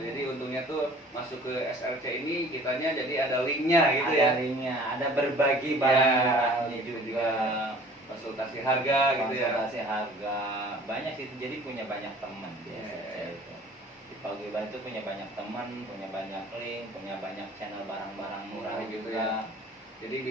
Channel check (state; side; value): normal; both; correlation 0.49